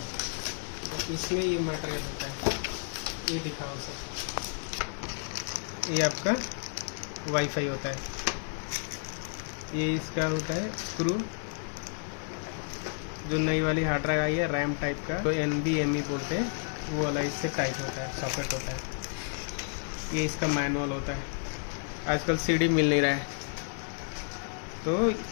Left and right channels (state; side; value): silent; right; 57 dB below the other